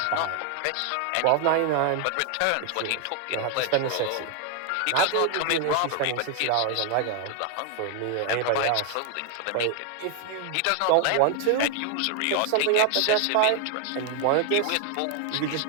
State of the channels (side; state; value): both; different; correlation 0.00